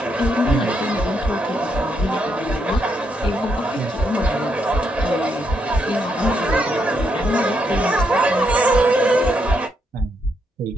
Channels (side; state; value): both; normal; correlation 0.78